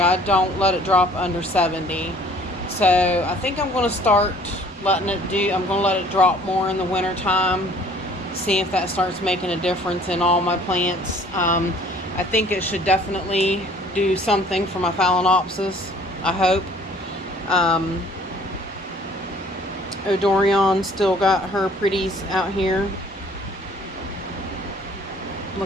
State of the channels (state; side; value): normal; both; correlation 0.55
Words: don't let it drop under 70. So I think I'm going to start letting it I'm going to let it drop more in the wintertime. See if that starts making a difference in all my plants. I think it should definitely do something for my Phalaenopsis, I hope. Odorion still got her pretties out here.